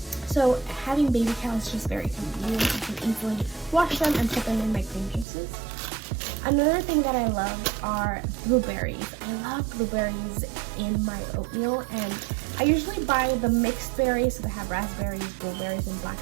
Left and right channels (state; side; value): drops out; left; at 5.2 s